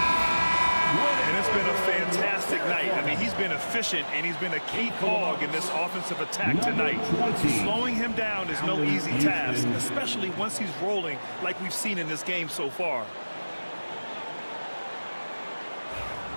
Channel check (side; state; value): both; inverted; correlation -1.00